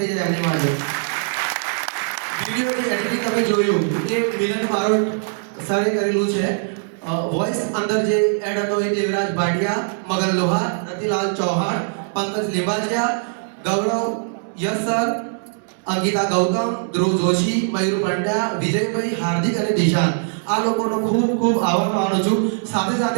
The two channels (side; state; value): left; silent; digital silence